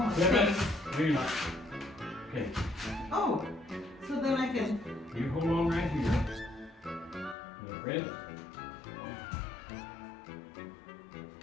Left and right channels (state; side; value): drops out; right; at 7.4 s